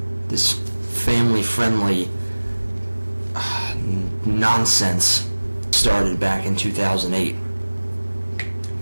this family-friendly nonsense started back in 2008.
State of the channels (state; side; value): inverted; both; correlation -1.00